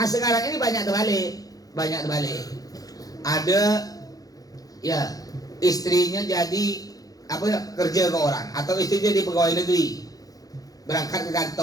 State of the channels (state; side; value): late; right; 0.18 ms